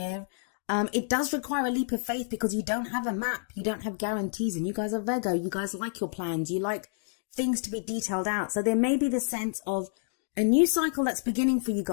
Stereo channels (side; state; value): right; silent; digital silence